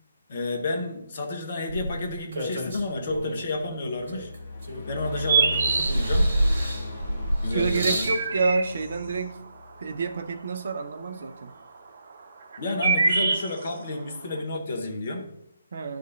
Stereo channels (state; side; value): inverted; both; correlation -0.80